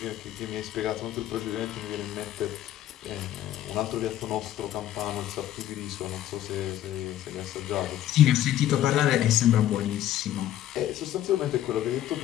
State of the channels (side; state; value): right; quieter; 12.5 dB